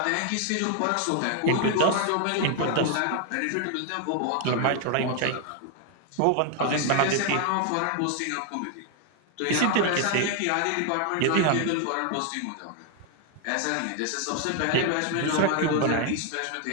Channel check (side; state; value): both; different; correlation 0.00